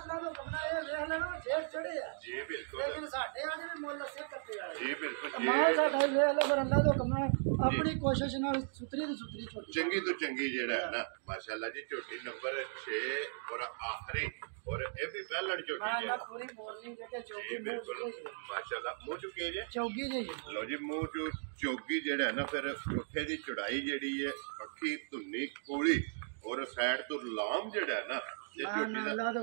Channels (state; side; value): silent; left; digital silence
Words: ਦਾ ਹੁਕਮ ਨਾਲ ਇਹ ਵੇਖ ਲੈਣਾ ਫੇਰ ਚੜੇ ਆ ਜੀ ਬਿਲਕੁਲ ਲੇਕਿਨ ਸਾਡੇ ਆ ਜਿਹੜੇ ਮੁੱਲ ਸੇ ਕਰਦੇ ਆ ਜੀ ਬਿਲਕੁਲ ਮਾਲ ਸਾਡਾ ਵੇਖ ਲੈ ਪਰ ਅੱਲਾ ਦਾ ਹੁਕਮ ਨਾਲ ਆਪਣੀ ਕੋਸ਼ਿਸ਼ ਨਾਲ ਸੁਤਰੀ ਦੀ ਸੁਤਰੀ ਝੋਟੀ ਚੰਗੀ ਤੋਂ ਚੰਗੀ ਜਿਹੜਾ ਹੈ ਨਾ ਮਾਸ਼ਾਅੱਲਾ ਜੀ ਝੋਟੀ ਨੰਬਰ 6 ਔਰ ਆਖਰੀ ਔਰ ਇਹ ਵੀ ਪਹਿਲਣ ਝੋਟੀ ਹਾਂ ਹੈ ਨਾ ਪੂਰੀ ਮੋਰਨਿੰਗ ਜਿਹੜੇ ਜੀ ਚੌਕੀ ਬਿਲਕੁਲ ਮਾਸ਼ਾਅੱਲਾ ਮੂੰਹ ਚੁੱਕੇ ਜੇ ਚੌਕੀ ਜੀ ਲੋ ਜੀ ਮੂੰਹ ਚੋਂ ਚੌਗੀ ਜਿਹੜਾ ਹੈ ਨਾ ਫਿਰ ਪੁੱਠੇ ਦੀ ਚੜਾਈ ਜਿਹੜੀ ਹੈ ਅੱਖੀ ਧੁੰਨੀ ਕੋਲੀ ਔਰ ਸਾਈਡ ਤੋਂ ਲਾਮ ਜਿਹੜਾ ਹੈ ਨਾ ਇਹ ਝੋਟੀ ਦਾ ਅੱਲਾ ਦੇ